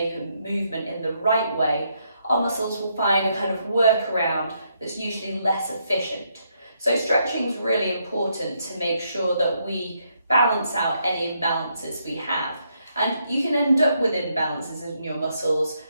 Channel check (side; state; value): both; inverted; correlation -0.76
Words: a movement in the right way, our muscles will find a kind of workaround that's usually less efficient. So stretching is really important to make sure that we balance out any imbalances we have. And you can end up with imbalances in your muscles